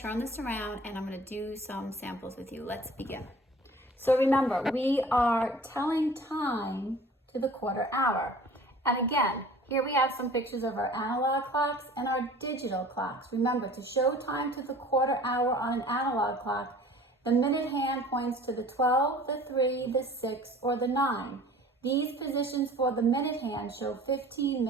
this around and I'm going to do some samples with you. Let's begin. So remember, we are telling time to the quarter hour. And again, here we have some pictures of our analog clocks and our digital clocks. Remember, to show time to the quarter hour on an analog clock, the minute hand points to the 12, the 3, the 6, or the 9. These positions for the minute hand show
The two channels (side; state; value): both; normal; correlation 0.46